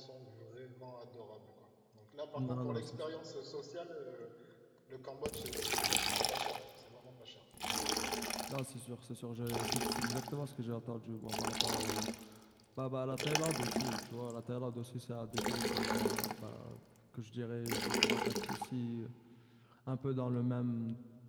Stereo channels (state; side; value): identical; both; correlation 1.00